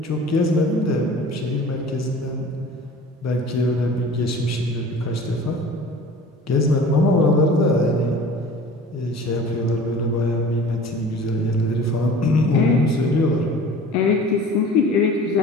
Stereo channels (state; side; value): normal; both; correlation 0.42